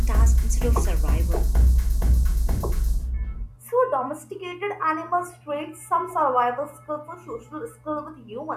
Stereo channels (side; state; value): both; identical; correlation 1.00